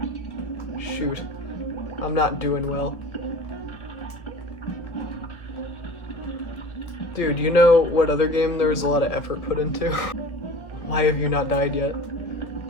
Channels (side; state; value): right; late; 1.5 ms